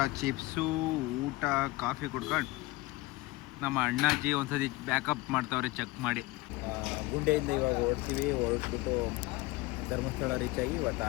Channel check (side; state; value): right; quieter; 20.5 dB